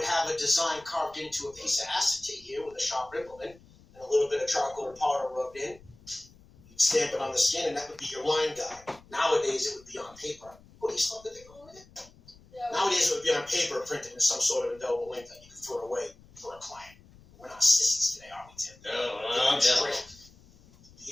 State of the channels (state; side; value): noise; left; rumble, 25 dB below the sound